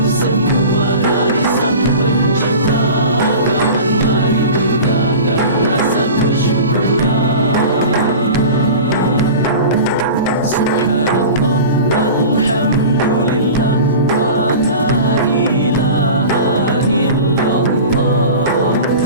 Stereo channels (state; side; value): inverted; both; correlation -0.36